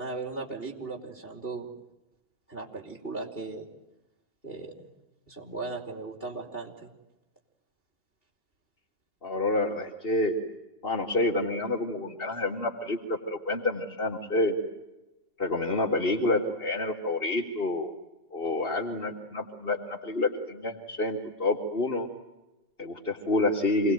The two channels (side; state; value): right; late; 2.8 ms